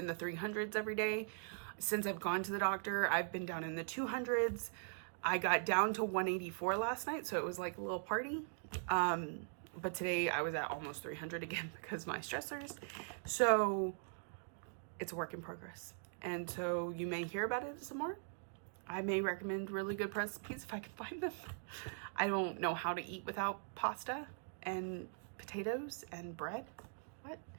the 300s every day. Since I've gone to the doctor, I've been down in the 200s. I got down to 184 last night, so it was like a little party. But today I was at almost 300 again because of my stressors. So it's a work in progress. And so you may hear about it some more. I may recommend really good recipes if I can find them. I don't know how to eat without pasta and potatoes and bread. What? You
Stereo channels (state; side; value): silent; left; digital silence